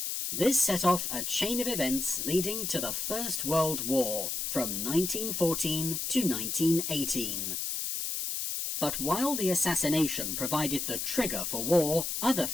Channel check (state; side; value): noise; left; hiss, 2 dB below the sound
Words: This set off a chain of events leading to the First World War, from 1914 to 1918. But while the assassination provided the trigger for war, other